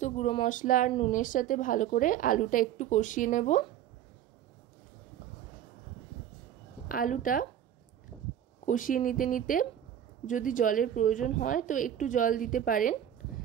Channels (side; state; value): left; quieter; 10.5 dB